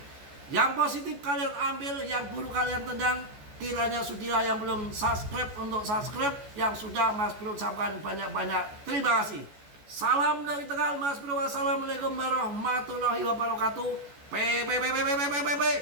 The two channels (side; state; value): left; late; 14 ms